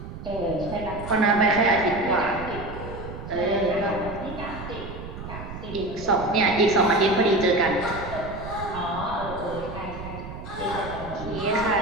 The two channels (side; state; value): right; noise; rumble, 11 dB below the sound